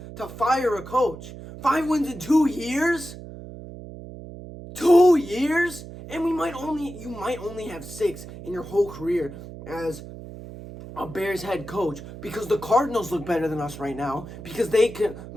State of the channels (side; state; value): right; noise; hum, 13 dB below the sound